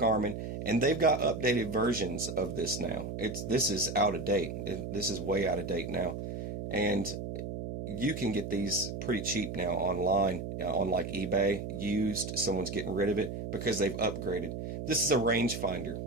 and they've got updated versions of this now. This is out of date. This is way out of date now, and you can get these pretty cheap now online on like eBay, used. Someone's getting rid of it because they've upgraded. This is a rangefinder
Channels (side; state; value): right; noise; hum, 6 dB below the sound